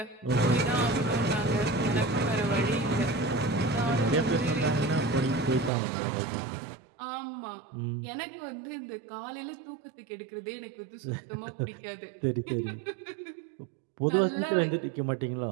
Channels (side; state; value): left; drops out; at 5.7 s